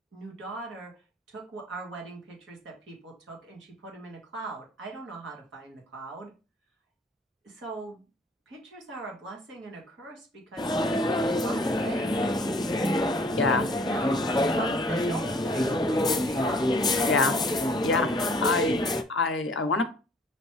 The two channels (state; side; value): normal; both; correlation 0.56